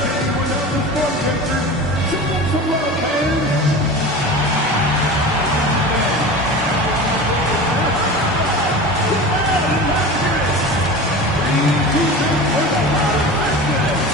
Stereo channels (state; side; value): normal; both; correlation 0.32